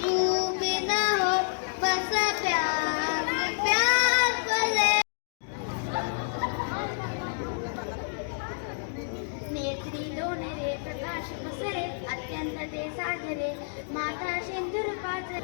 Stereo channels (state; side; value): silent; right; digital silence